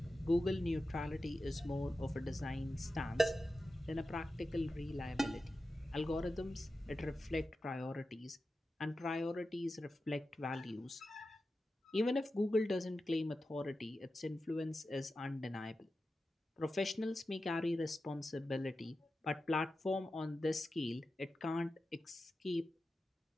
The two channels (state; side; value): normal; both; correlation 0.92